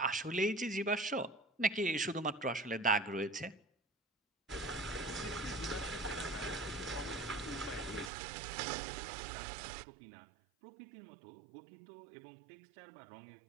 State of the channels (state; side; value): drops out; left; at 8.1 s